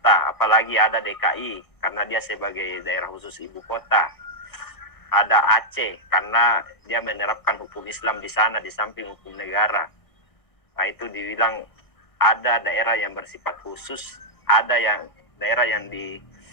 apalagi ada DKI karena dia sebagai daerah khusus ibu kota. Ada Aceh karena dia menerapkan hukum Islam di sana di samping hukum negara. Nah, itu dibilang ada daerah yang bersifat khusus, ada yang daerah yang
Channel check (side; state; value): right; late; 1.6 ms